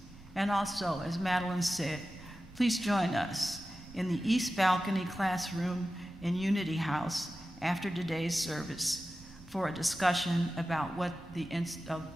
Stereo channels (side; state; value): both; normal; correlation 0.94